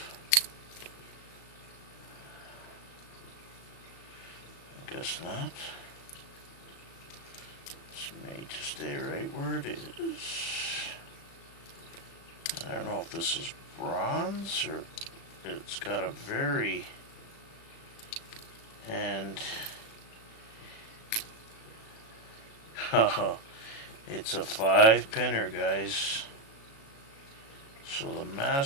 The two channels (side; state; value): right; late; 36 ms